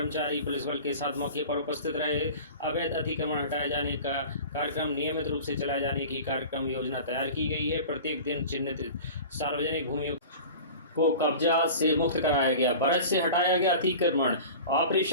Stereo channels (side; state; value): both; inverted; correlation -0.37